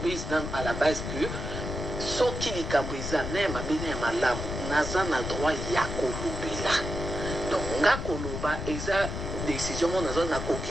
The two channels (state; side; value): noise; left; rumble, 5 dB below the sound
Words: nan à la base que soki likambo eza na ya mabe na ya malamu naza na droit ya kolobela donc nga koloba eza décision mo naza